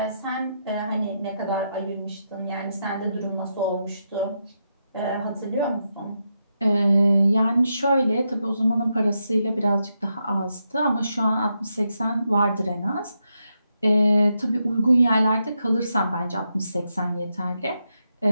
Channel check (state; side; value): inverted; both; correlation -0.84